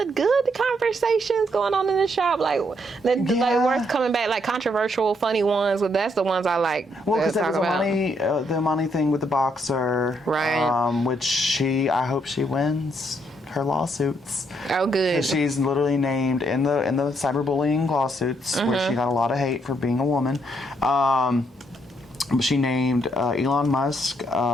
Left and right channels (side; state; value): both; normal; correlation 0.74